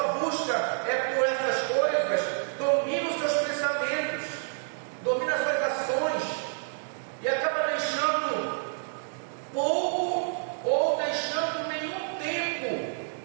busca é por essas coisas, domina os seus pensamentos, domina as suas ações, e acaba deixando pouco ou deixando nenhum tempo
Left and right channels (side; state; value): left; silent; digital silence